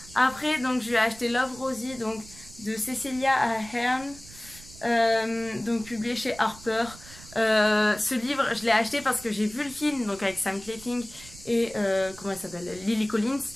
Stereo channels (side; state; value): right; noise; rumble, 19 dB below the sound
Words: Après, donc je vais acheter Love Rosie, donc de Cecilia Ahern, donc publié chez Harper. Ce livre, je l'ai acheté parce que j'ai vu le film, donc avec Sam Claflin et comment elle s'appelle, Lily Collins.